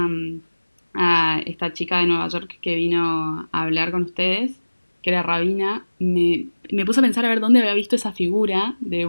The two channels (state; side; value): inverted; both; correlation -1.00